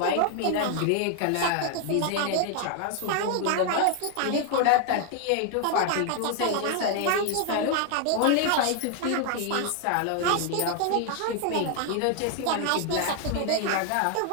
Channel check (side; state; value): both; different; correlation 0.00